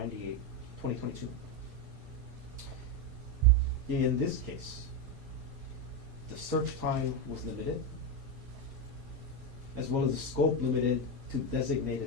2022. In this case, the search time was limited, as well as the scope limited to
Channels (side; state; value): both; normal; correlation 0.09